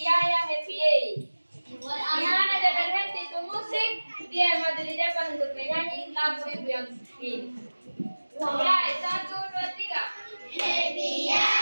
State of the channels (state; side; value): inverted; both; correlation -1.00